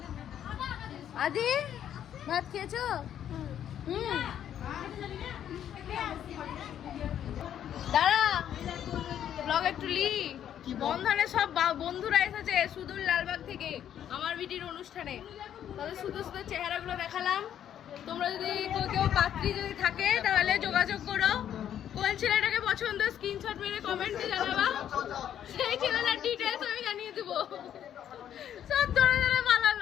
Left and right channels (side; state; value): right; quieter; 10.1 dB